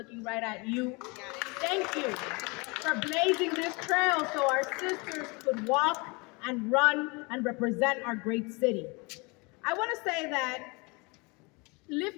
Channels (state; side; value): quieter; right; 28.4 dB